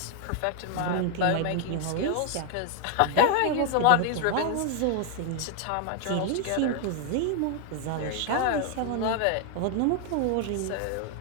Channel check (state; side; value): different; both; correlation 0.00